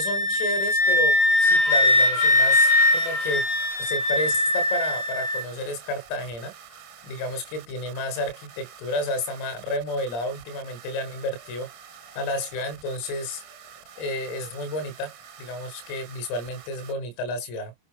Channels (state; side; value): late; right; 25 ms